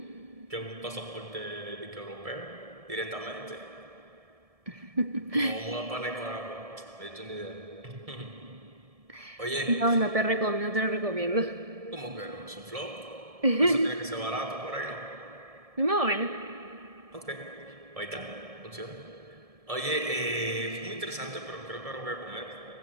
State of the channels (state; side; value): late; left; 1.7 ms